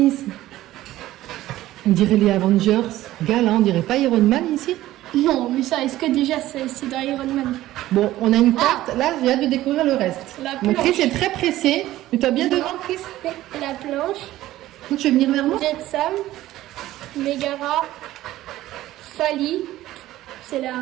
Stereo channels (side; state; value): left; quieter; 15.2 dB